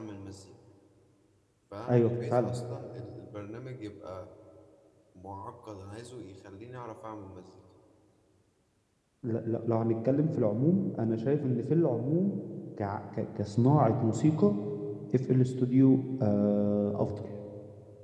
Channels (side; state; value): both; identical; correlation 1.00